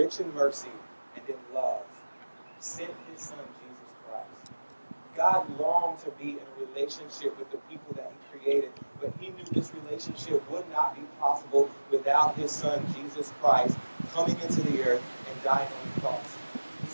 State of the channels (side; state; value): both; inverted; correlation -1.00